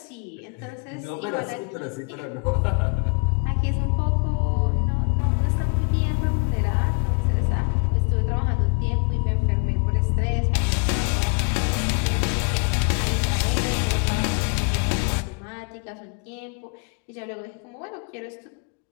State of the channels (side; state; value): right; quieter; 35.7 dB